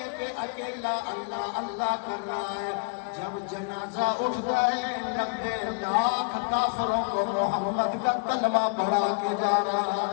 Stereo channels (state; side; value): quieter; right; 35.2 dB